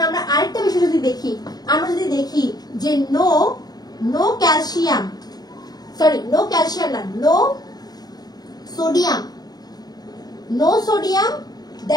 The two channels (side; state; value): right; late; 0.19 ms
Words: আমরা আরেকটা বিষয় যদি দেখি, আমরা যদি দেখি যে নো ক্যালসিয়াম না, no sodium,